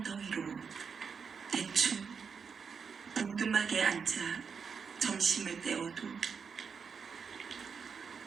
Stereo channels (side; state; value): left; quieter; 6.0 dB